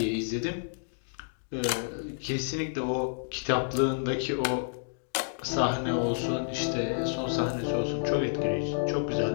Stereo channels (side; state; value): right; silent; digital silence